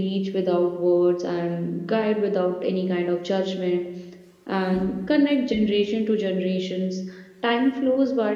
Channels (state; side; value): identical; both; correlation 1.00